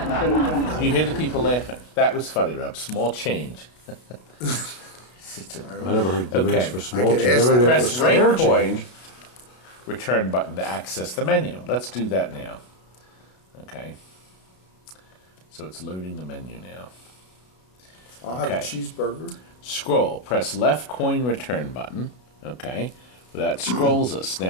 You hear the people laughing. That was funny, Rob. Small change. I never heard the Okay. demand for small could change. ask I never that heard Press for right spare coin, change. return button to access the menu. Let's do that now. Okay. So it's loading the menu now. I'll have a Okay. cheeseburger. Scroll. Press left coin return button. Okay. That scrolls us.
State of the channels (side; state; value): right; late; 32 ms